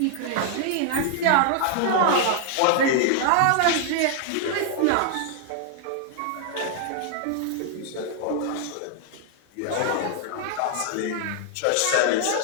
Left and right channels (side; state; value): both; different; correlation 0.00